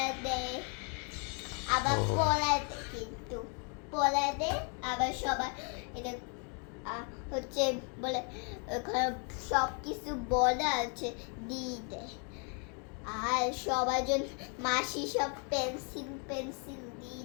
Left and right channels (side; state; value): right; quieter; 38.7 dB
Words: দেয়, আবার ও। পড়া দেয়, কিন্তু পড়া দেয় আবার সবার এটা হচ্ছে বলে ওখানে সব কিছু বলা আছে দিয়ে দেয়। আর সবার জন্য মাসি সব পেন্সিল পেন্সিল দিয়ে